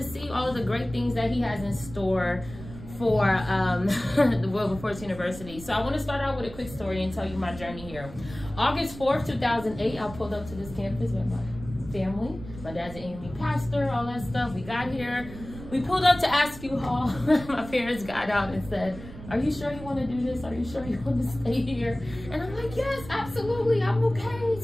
see all of the great things that he has in store for the Wilberforce University. So I want to start out with a quick story and tell you my journey here. August 4th, 2008, I pulled up to this campus with my family. My dad's an AME pastor, all that stuff. We got here. We pulled up to Askew Hall. My parents got out and said, "Are you sure you want to do this? Are you sure you want to stay here?" And I'm like, "Yes, absolutely, I'm okay."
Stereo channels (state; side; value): noise; right; rumble, 14 dB below the sound